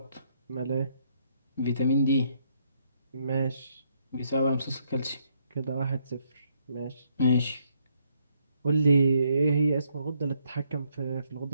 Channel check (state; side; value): inverted; both; correlation -0.73